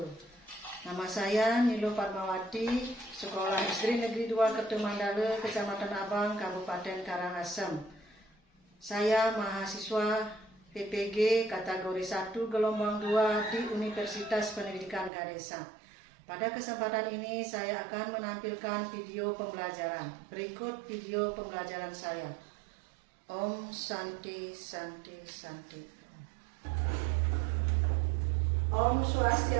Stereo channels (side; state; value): left; drops out; at 15.1 s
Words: Nama saya Nilo Padmawati, Sekolah SD Negeri 2 Kertemandala, Kecamatan Abang, Kabupaten Karangasem. Saya mahasiswa PPG kategori 1 gelombang 2 di Universitas Pendidikan Ganesha. Pada kesempatan ini saya akan menampilkan video pembelajaran. Berikut video pembelajaran saya. Om Santi Santi Santi. Om